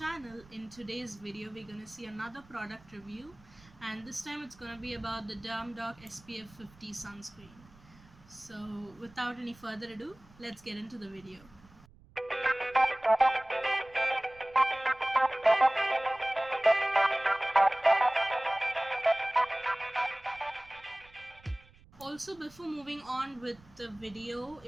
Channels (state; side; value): noise; right; rumble, 25 dB below the sound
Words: In today's video we're gonna see another product review, and this time it's gonna be about the Dermdoc SPF 50 sunscreen. So without any further ado, let's get into the video. Also, before moving on with the video,